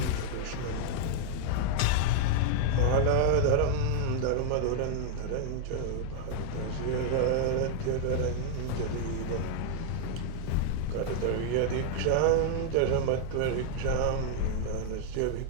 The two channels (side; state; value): both; different; correlation 0.00